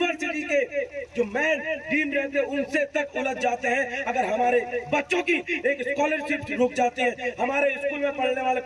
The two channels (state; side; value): identical; both; correlation 1.00